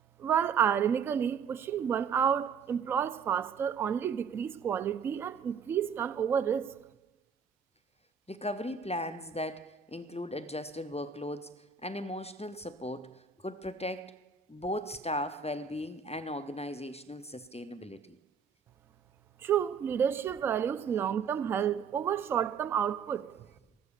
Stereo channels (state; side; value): quieter; left; 6.3 dB